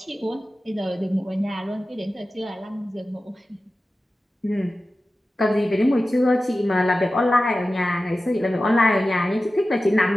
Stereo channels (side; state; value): both; normal; correlation 0.95